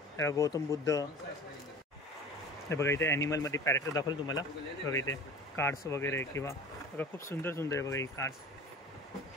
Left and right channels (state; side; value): normal; both; correlation 0.39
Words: गौतम बुद्ध हे बघा. इथे ॲनिमलमध्ये पॅरेक्टर दाखवलं तुम्हाला बघा. इथे कार्ड्स वगैरे किंवा बघा खूप सुंदर सुंदर आहे बघा ही कार्ड्स.